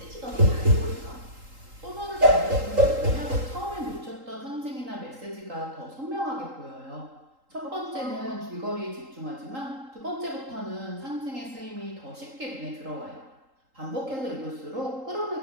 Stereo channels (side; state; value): left; late; 3.8 ms